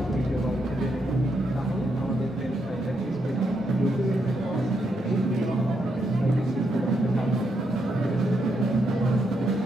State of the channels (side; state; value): both; normal; correlation 0.80